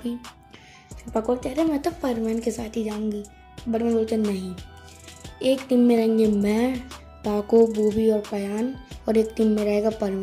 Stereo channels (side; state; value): both; identical; correlation 1.00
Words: ही। पाको कह रहे मैं तो परमन के साथ ही जाऊंगी। बर्डमैन बोलते नहीं, एक टीम में रहेंगे मैं, पाको, बूबी और पयान और एक टीम में रहेगा